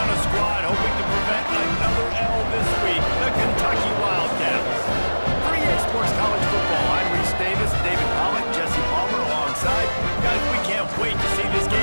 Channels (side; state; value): both; inverted; correlation -1.00